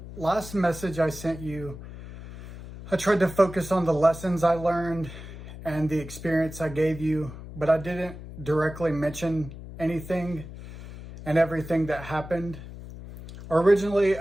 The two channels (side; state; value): left; noise; hum, 13 dB below the sound